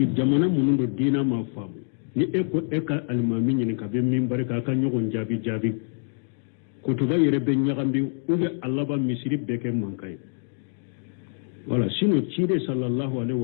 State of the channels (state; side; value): silent; right; 61 dB below the other